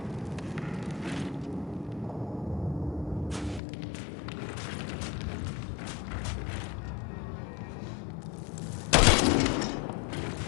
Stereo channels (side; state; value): right; drops out; at 3.6 s